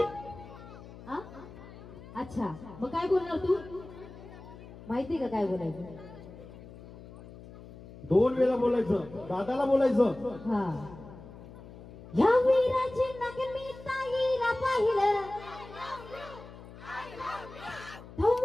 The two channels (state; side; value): noise; left; hum, 17 dB below the sound